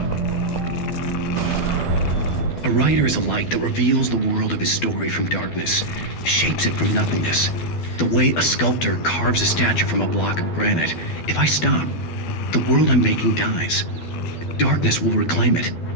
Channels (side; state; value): right; late; 12 ms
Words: A writer is a light that reveals the world of his story from darkness, shapes it from nothingness. The way a sculptor carves a statue from a block of granite. If I stop, the world I'm making dies. Darkness will reclaim it.